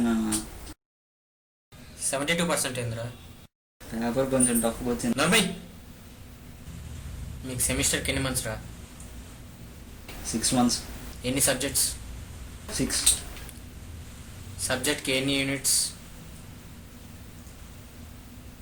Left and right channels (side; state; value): both; identical; correlation 1.00